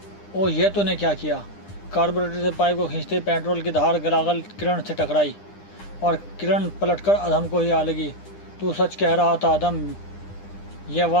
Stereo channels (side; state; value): right; late; 9.9 ms